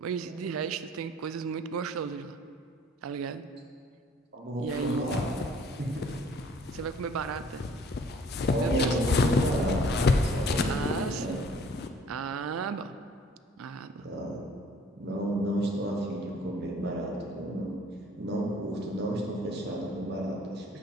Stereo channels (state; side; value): normal; both; correlation 0.56